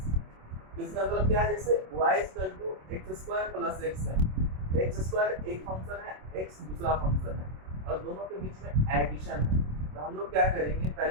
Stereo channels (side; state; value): left; late; 27 ms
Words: इसका मतलब क्या है? जैसे y equal to X square plus X है, एक्स स्क्वायर एक फंक्शन है, एक्स दूसरा फंक्शन है, और दोनों के बीच में एडिशन है, तो हम लोग क्या करेंगे?